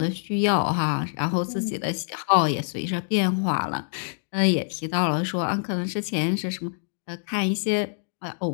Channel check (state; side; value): silent; right; digital silence